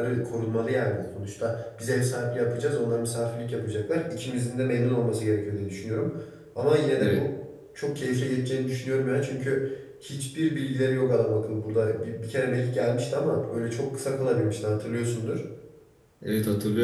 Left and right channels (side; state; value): both; identical; correlation 1.00